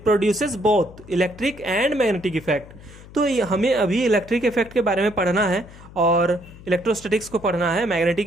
produces both electric and magnetic effect. तो हमें अभी इलेक्ट्रिक इफेक्ट के बारे में पढ़ना है, और इलेक्ट्रोस्टैटिक्स को पढ़ना है।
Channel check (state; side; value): noise; left; hum, 19 dB below the sound